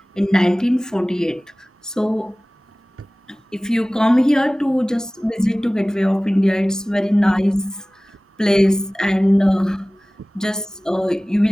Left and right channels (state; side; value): normal; both; correlation 0.98